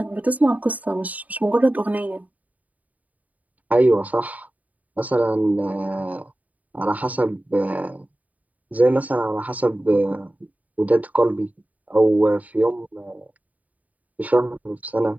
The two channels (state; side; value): late; left; 0.074 ms